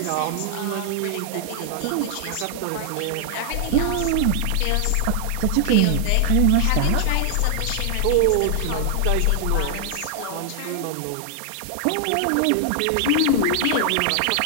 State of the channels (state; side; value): different; both; correlation 0.00